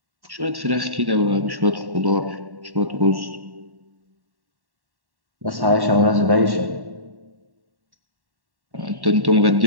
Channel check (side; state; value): left; late; 1.1 ms